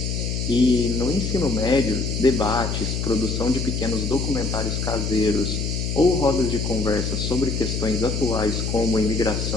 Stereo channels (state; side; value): noise; left; hum, 2 dB below the sound